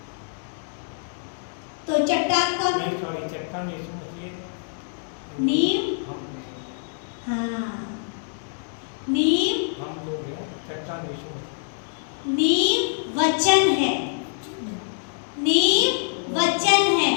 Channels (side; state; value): right; silent; 62 dB below the other